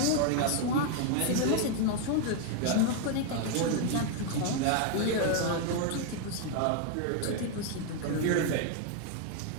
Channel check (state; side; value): different; both; correlation 0.00